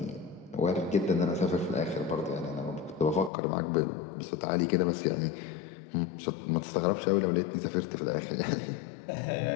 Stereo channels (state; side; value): drops out; right; at 3.3 s